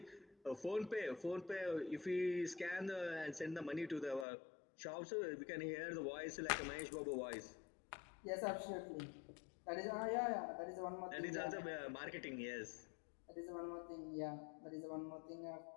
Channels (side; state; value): right; drops out; at 4.2 s